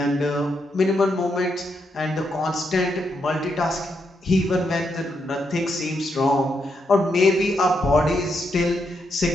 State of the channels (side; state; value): both; normal; correlation 0.80